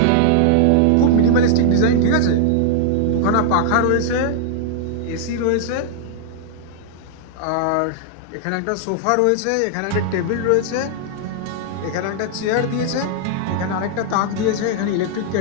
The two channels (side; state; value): both; different; correlation -0.01